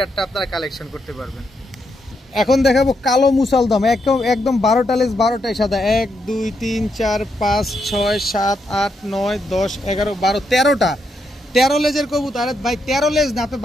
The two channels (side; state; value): both; normal; correlation 0.80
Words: আপনারা কালেকশন করতে পারবেন। এখন দেখাবো কালো মুসালদম, একদম 12টা লেজ, 12টাই সাদা। 1 2 3 4 5 6 7 8 9 10 11 12 13টা, 13 লেজের কবুতর। আরে ভাই 13 লেজ না, আপনি